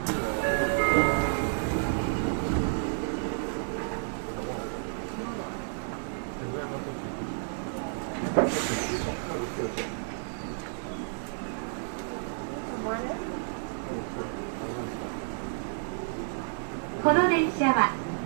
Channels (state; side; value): silent; left; digital silence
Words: この電車は